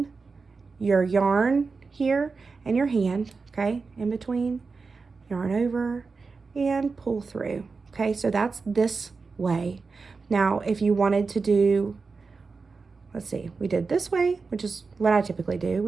your yarn here and your hand, okay? In between, yarn over, and pull through, okay? So that's this way. Now, if you wanted to do, let's see, we did this way, which is what I typically do.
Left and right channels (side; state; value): left; quieter; 4.5 dB